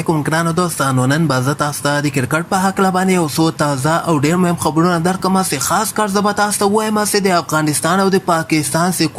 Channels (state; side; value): identical; both; correlation 1.00